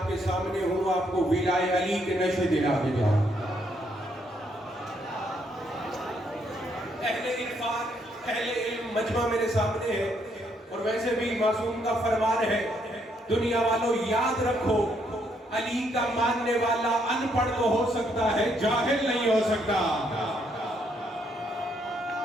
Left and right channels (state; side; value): normal; both; correlation 0.73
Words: کے سامنے ہوں آپ کو ولائے علی کے نشے دلا کے جاؤں. اہل عرفان، اہل علم مجمع میرے سامنے ہے، اور ویسے بھی معصوم کا فرمان ہے دنیا والوں یاد رکھو علی کا ماننے والا ان پڑھ تو ہو سکتا ہے، جاہل نہیں ہو سکتا.